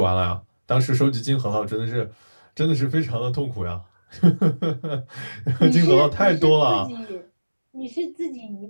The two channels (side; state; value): both; inverted; correlation -1.00